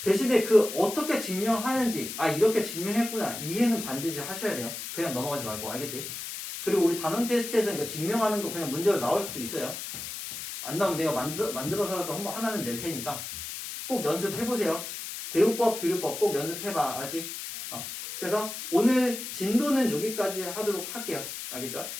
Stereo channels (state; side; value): noise; left; hiss, 8 dB below the sound